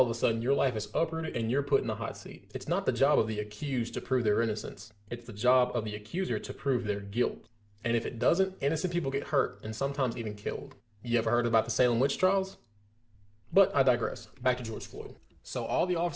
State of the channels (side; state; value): both; identical; correlation 1.00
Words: of a sudden your life is uprooted and you're put in the hot seat. It's not the job of the accused to prove their innocence. It's the job of the accuser to prove their guilt. And if it doesn't, innocent people get hurt and sometimes even killed. You ever heard about the Salem witch trials? But I digress. Back to George Floyd. So all the